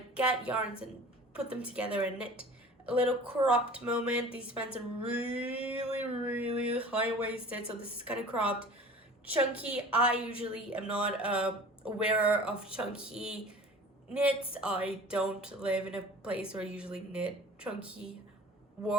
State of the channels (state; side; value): normal; both; correlation 0.43